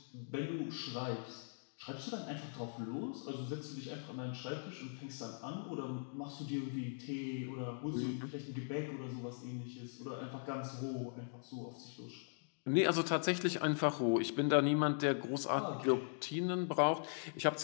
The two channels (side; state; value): right; silent; digital silence